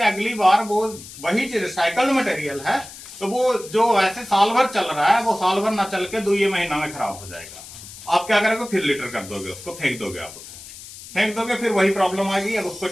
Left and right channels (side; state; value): left; noise; hiss, 15 dB below the sound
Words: अगली बार वो वही चीज रिसाइकल्ड मटेरियल है तो वो जो वैसे साल भर चल रहा है वो साल भर ना चल के 2 महीना में खराब हो जाएगा। आप क्या करोगे, फिर लिटर कर दोगे, उसको फेंक दोगे, आप उसे फेंक दोगे, फिर वही प्रॉब्लम आएगी। अब उसको